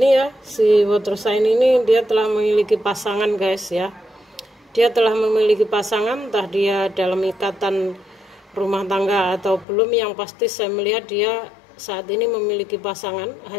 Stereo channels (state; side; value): drops out; right; at 9.7 s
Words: ya, si water sign ini dia telah memiliki pasangan guys ya. Dia telah memiliki pasangan, entah dia dalam ikatan rumah tangga atau belum. Yang pasti saya melihat dia saat ini memiliki pasangan.